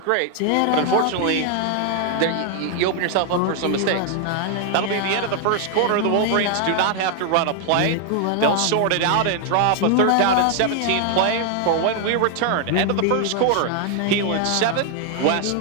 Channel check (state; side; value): different; both; correlation 0.00